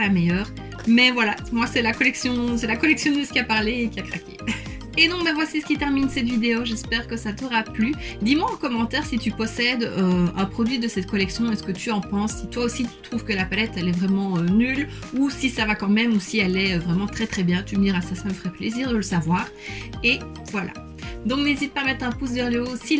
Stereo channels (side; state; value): both; identical; correlation 1.00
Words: la meilleure. Mais voilà, moi, c'est la collectionneuse qui a parlé et qui a craqué. Et donc, ben voici ce qui termine cette vidéo. J'espère que ça t'aura plu. Dis-moi en commentaire si tu possèdes un produit de cette collection. Est-ce que tu en penses? Si toi aussi tu trouves que la palette elle est vraiment nulle, ou si ça va quand même, ou si elle est vraiment très très bien. Tu me diras, ça me ferait plaisir de le savoir. Et voilà. Donc n'hésite pas à mettre un pouce vers le haut si